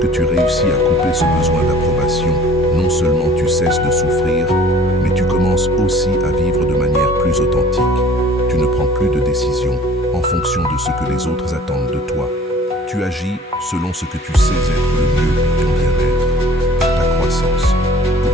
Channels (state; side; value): normal; both; correlation 0.50